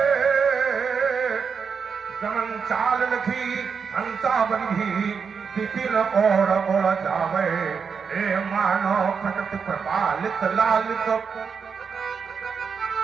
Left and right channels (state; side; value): quieter; left; 6.0 dB